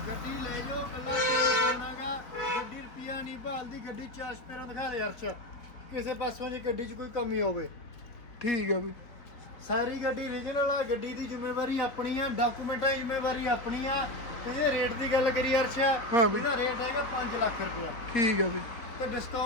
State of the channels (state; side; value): late; right; 4.2 ms